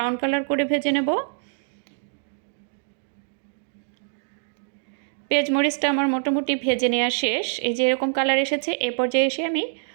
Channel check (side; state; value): left; silent; digital silence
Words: কালার করে ভেজে নেব। পেঁয়াজ মরিচটা আমার মোটামুটি ভেজে নেওয়া শেষ। এই যে এরকম কালার এসেছে, এ পর্যায়ে এসে আমি